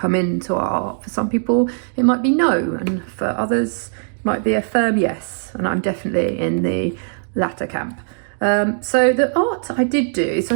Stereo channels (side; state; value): left; silent; digital silence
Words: into our art? For some people it might be no, and for others it might be a firm yes, and I'm definitely in the latter camp. So the art I did do, so